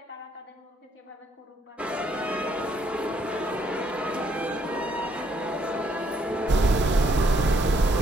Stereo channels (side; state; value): both; normal; correlation 0.70